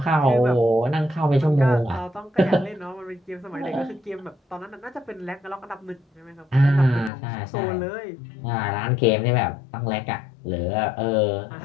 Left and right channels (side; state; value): right; drops out; at 7.1 s